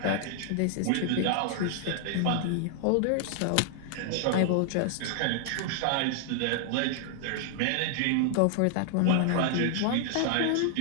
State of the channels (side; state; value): both; different; correlation 0.00